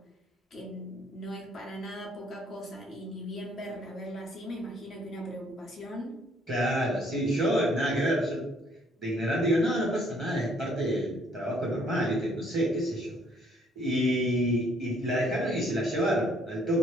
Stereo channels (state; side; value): normal; both; correlation 0.64